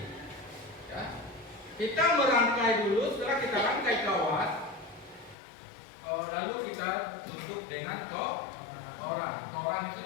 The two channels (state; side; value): drops out; right; at 5.4 s